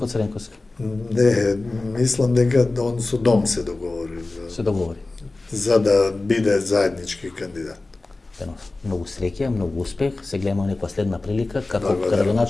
Цренковски. Не, мислам дека он со Дом се договори. Се договори. За да биде заеднички кандидат. Многу среќа, многу успех. Се гледаме некоја следна прилика како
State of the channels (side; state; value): right; quieter; 3.2 dB